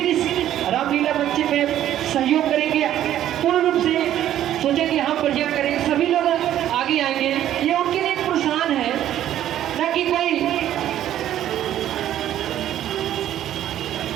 इस रामलीला बच्चे में सहयोग करेंगे, पूर्ण रूप से सोचेंगे हम प्रोजेक्ट करेंगे, सभी लोग आगे आएंगे। ये उनके लिए एक प्रोत्साहन है, ना कि कोई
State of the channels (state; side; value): quieter; left; 11.9 dB